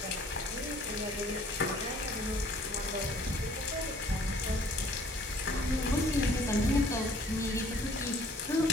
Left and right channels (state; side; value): normal; both; correlation 0.57